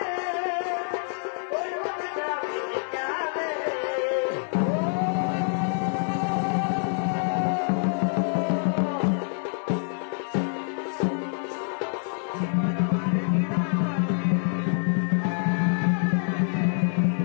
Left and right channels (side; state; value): right; silent; 61 dB below the other